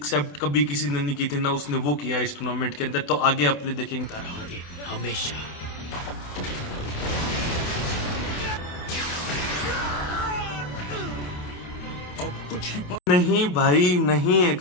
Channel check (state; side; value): late; right; 28 ms